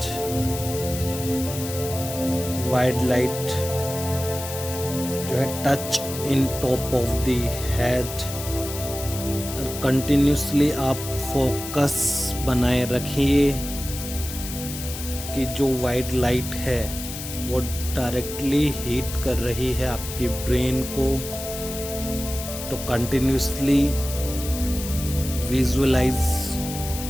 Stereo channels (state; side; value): noise; left; hiss, 9 dB below the sound